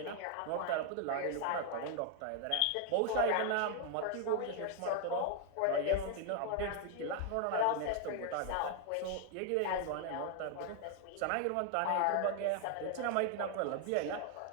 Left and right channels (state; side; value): different; both; correlation 0.01